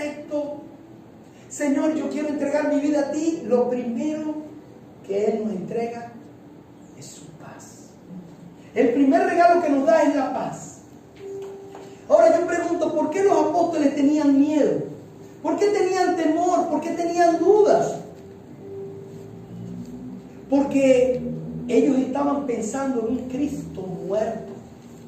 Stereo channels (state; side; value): identical; both; correlation 1.00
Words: Señor, yo quiero entregar mi vida a ti. Lo primero que Él nos entrega es su paz. El primer regalo que nos da es la paz. Ahora yo pregunto, ¿por qué los apóstoles tenían miedo? ¿Por qué tenían temor? ¿Por qué tenían dudas? Porque ellos estaban pensando en un Cristo muerto.